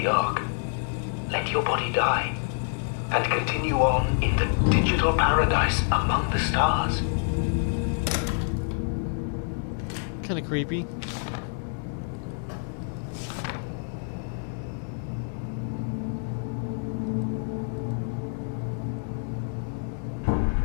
Ark. Let your body die and continue on in the digital paradise among the stars. Kind of creepy.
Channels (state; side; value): silent; right; 60 dB below the other